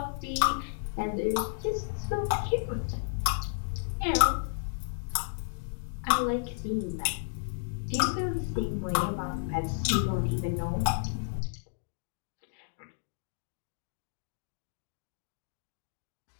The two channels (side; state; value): right; silent; digital silence